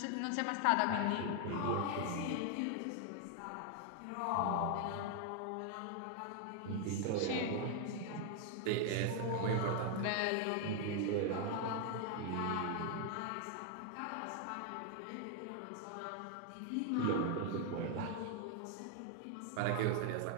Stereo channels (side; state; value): both; different; correlation 0.00